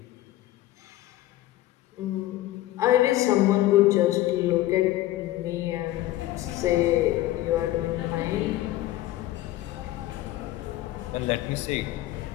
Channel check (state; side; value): quieter; right; 15.5 dB